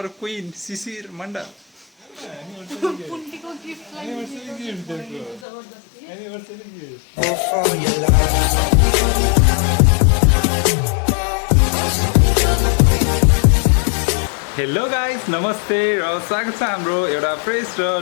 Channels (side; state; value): right; drops out; at 5.5 s